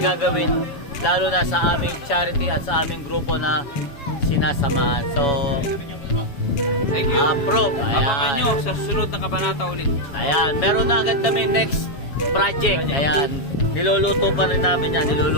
gagawin, lalo na sa aming charity at sa aming grupo na sinasamahan. So, Thank you. approve. Abangan nyo Ayan. sa susunod na kabanata ulit. Ayan. Meron na agad kami next project. Ayan. Niluluto pa rin namin yan.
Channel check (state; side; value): late; right; 7.1 ms